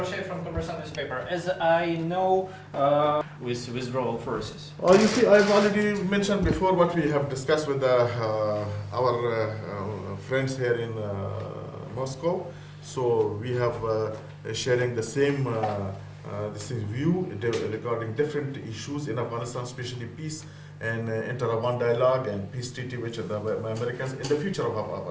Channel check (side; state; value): both; identical; correlation 1.00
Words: From Commercial newspaper. As I know, with withdrawal forces. You see, I've already mentioned before what we have discussed with our friends here in Moscow. So we have sharing the same view regarding different issues in Afghanistan, especially peace and inter-Afghan dialogue and peace treaty, which are the Americans in the future of